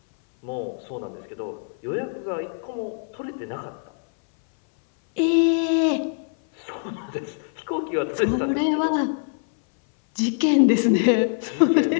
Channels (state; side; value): silent; right; 60 dB below the other